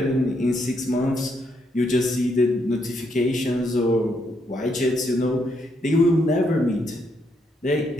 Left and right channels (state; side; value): normal; both; correlation 0.76